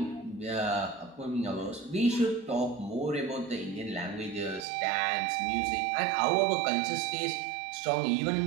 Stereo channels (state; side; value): drops out; left; at 4.7 s